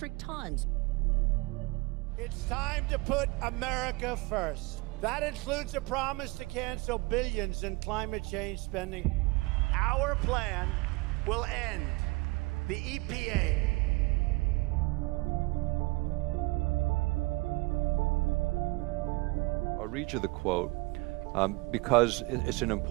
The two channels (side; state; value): left; quieter; 23.8 dB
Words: tons. It's time to put America first. That includes a promise to cancel billions in climate change spending. Our plan will end the EPA. I'll read you the quote because it's an